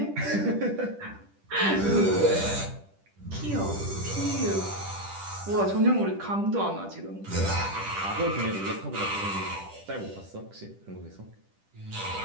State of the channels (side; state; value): left; late; 10 ms